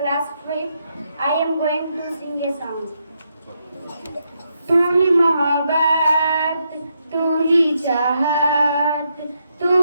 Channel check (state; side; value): inverted; both; correlation -0.81